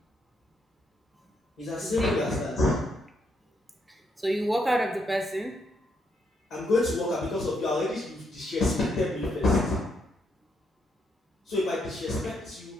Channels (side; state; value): both; normal; correlation 0.77